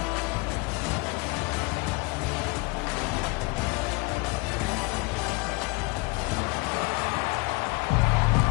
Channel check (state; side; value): quieter; right; 27.6 dB